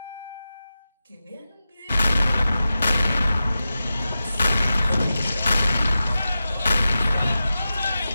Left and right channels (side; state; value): both; inverted; correlation -0.93